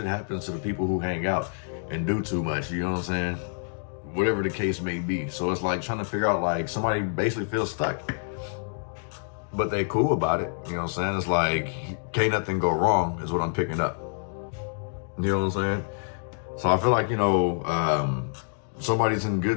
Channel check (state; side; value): silent; right; digital silence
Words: happens to the people who hang out and do too much. You know what I'm saying? Whatever the case may be. So it's like trying to figure out, like somebody basically feels stuck, but they cool about it. You know what I'm saying? It's like, can't nothing go wrong is what I'm picking up. You know what I'm saying? So I feel like, you know, somebody's in